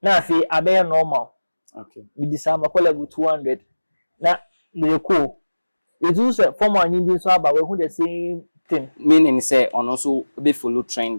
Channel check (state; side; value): inverted; both; correlation -1.00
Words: Na fi abaya normal. Okay. With the sum call level 200. Na the cool. It's also formal and so about who the same thing. Meaning say on also be follow